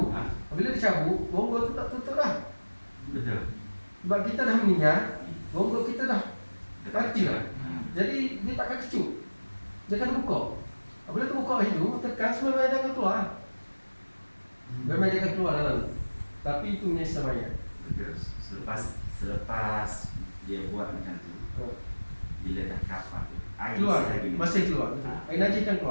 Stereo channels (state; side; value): inverted; both; correlation -1.00